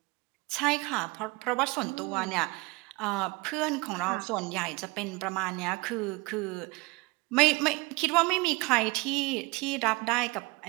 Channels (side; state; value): left; quieter; 24.9 dB